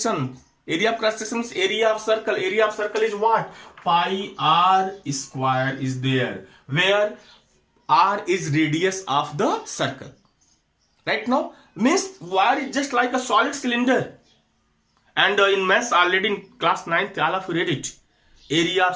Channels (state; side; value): identical; both; correlation 1.00